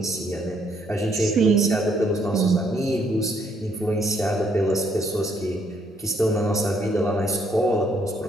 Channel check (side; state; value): both; normal; correlation 0.70